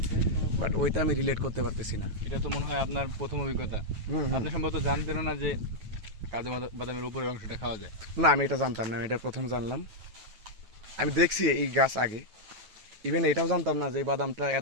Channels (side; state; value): left; late; 9.2 ms